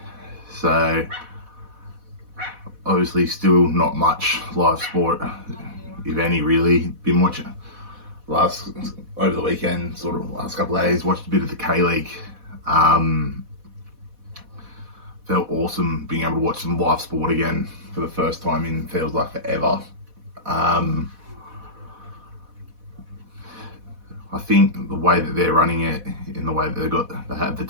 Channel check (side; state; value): left; late; 4.1 ms